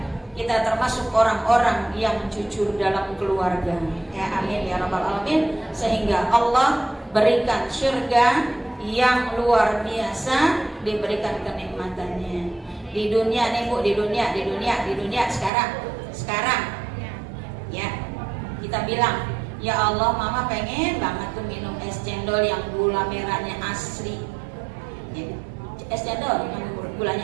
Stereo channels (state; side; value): drops out; left; at 15.5 s